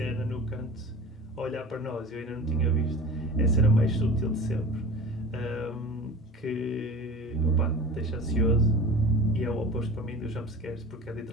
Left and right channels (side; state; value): both; normal; correlation 0.37